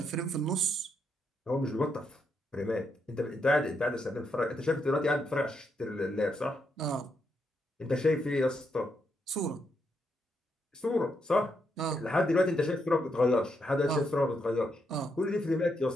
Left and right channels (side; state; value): both; normal; correlation 0.79